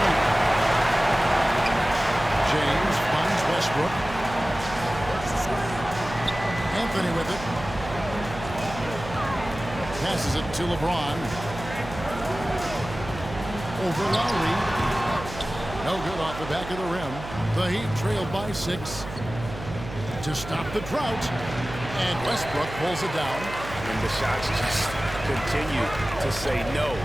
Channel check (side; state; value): right; noise; hum, 11 dB below the sound